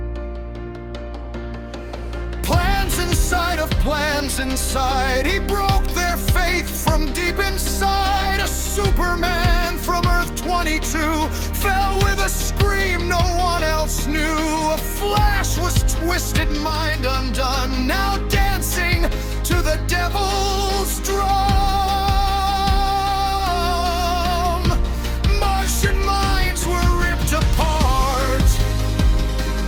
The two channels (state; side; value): identical; both; correlation 1.00